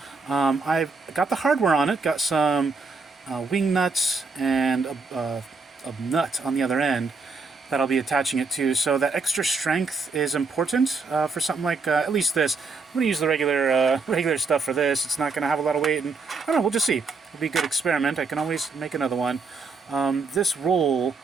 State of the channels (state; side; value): quieter; left; 4.3 dB